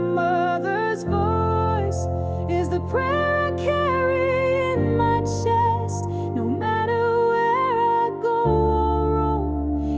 voice is the prayer I carry in my chest. No matter where I go or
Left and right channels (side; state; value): both; identical; correlation 1.00